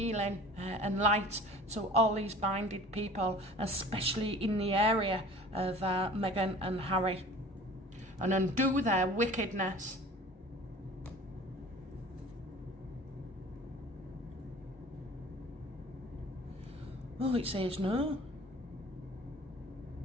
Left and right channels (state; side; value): normal; both; correlation 0.44